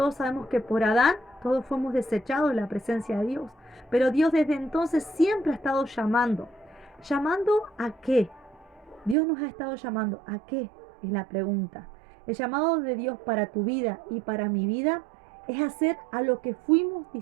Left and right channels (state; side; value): drops out; left; at 9.2 s